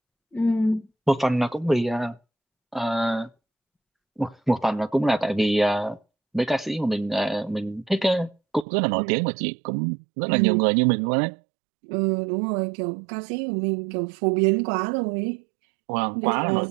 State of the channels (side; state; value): left; drops out; at 8.7 s